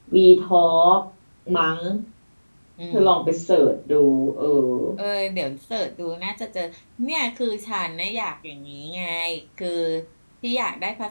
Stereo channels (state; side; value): inverted; both; correlation -1.00